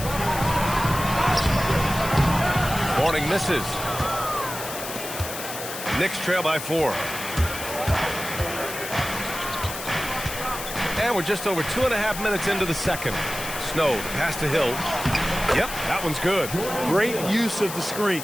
Morning misses. Knicks trail by 4. And we're just over 2.5 minutes into the second. Snow, the pass to Hill. Yep, that one's good. Great use of the screen.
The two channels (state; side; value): noise; left; hiss, 8 dB below the sound